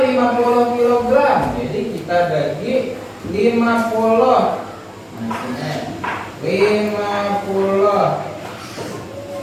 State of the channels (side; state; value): both; identical; correlation 1.00